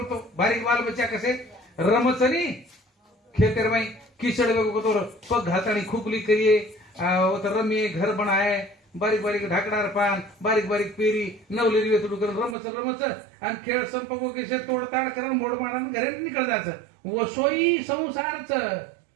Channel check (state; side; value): drops out; left; at 12.6 s